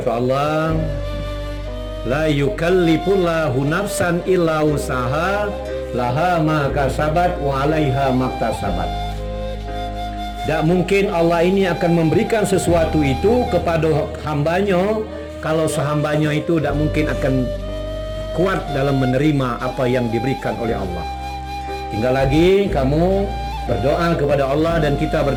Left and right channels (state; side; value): identical; both; correlation 1.00